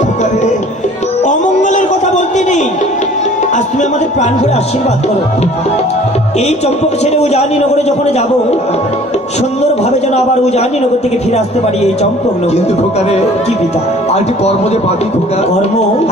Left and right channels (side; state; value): both; normal; correlation 0.51